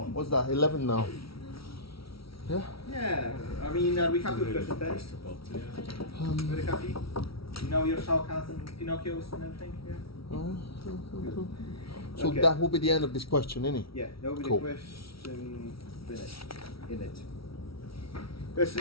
What's that? 11 now. Yeah. Yeah, I mean, are we happy with question 10? Very happy? You know your Shao Kahns and Pinocchios and everything? Yeah? So Okay. that will be the end of this question, innit? Yeah, that will be Cool. the question finished in it.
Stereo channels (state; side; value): late; right; 0.75 ms